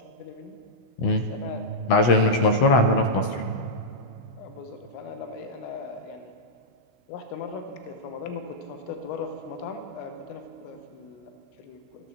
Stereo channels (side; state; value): right; late; 16 ms